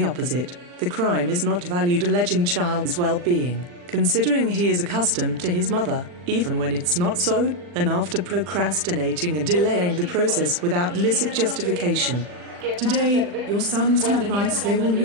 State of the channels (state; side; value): late; left; 40 ms